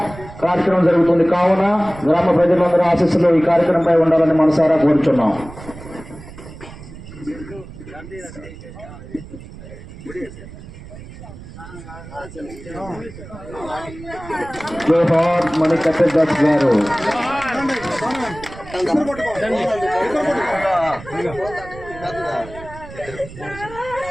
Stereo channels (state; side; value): noise; right; rumble, 15 dB below the sound